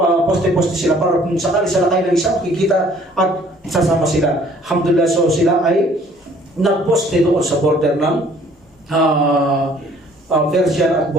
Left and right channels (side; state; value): both; normal; correlation 0.57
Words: poste-poste sila para kung sakali sa lakay ng isa makikita at sasama sila. Alhamdulillah. So sila ay nagposte doon sa border ng Persian at